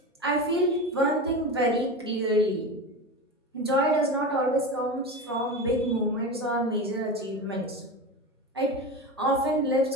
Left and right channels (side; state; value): both; normal; correlation 0.25